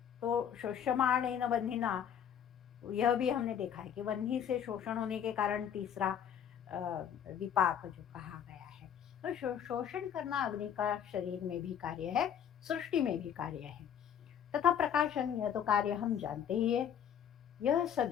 तो शोष्यमाणेन बन्धिना, यह भी हमने देखा है कि बन्ही से शोषण होने के कारण तीसरा विपाक जो कहा गया है। तो शोषण करना अग्नि का शरीर में भी कार्य है, सृष्टि में भी कार्य है। तथा प्रकाशन, यह तो कार्य हम जानते ही है। यह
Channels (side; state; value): right; quieter; 8.8 dB